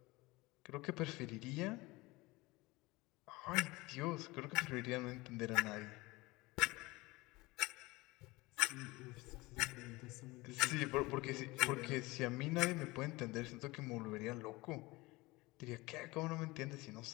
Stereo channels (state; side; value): quieter; right; 22.0 dB